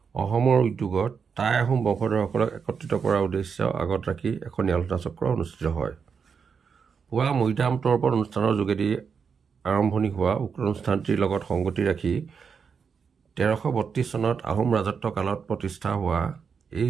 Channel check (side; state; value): left; quieter; 6.2 dB